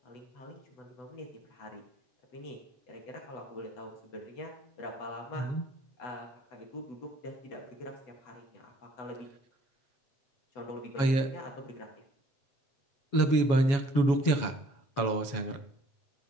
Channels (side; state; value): right; late; 7.2 ms